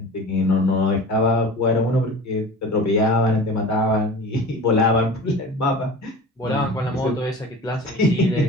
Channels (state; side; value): normal; both; correlation 0.37